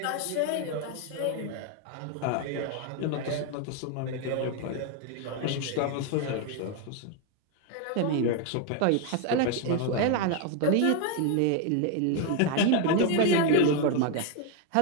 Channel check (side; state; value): both; different; correlation 0.01